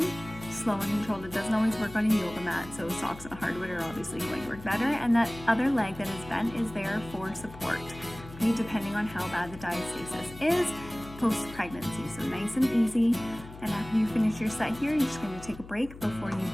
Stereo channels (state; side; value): noise; left; hum, 16 dB below the sound